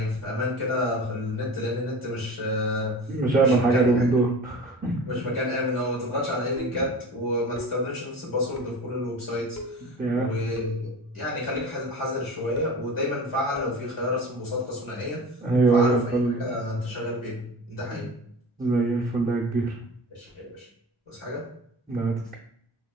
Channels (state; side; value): normal; both; correlation 0.36